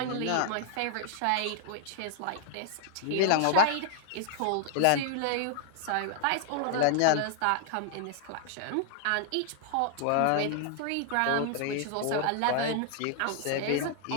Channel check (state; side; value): different; both; correlation 0.00